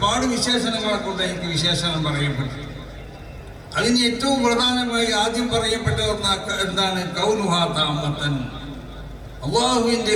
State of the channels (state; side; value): identical; both; correlation 1.00